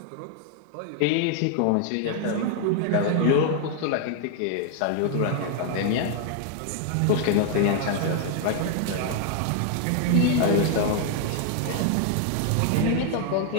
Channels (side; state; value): both; different; correlation 0.00